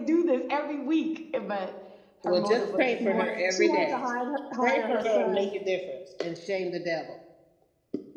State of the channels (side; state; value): both; identical; correlation 1.00